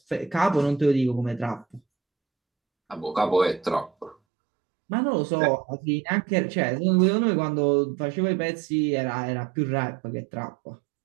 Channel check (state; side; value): drops out; left; at 4.2 s